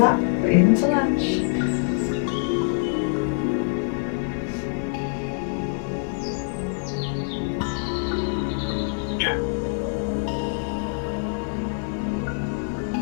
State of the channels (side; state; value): right; silent; digital silence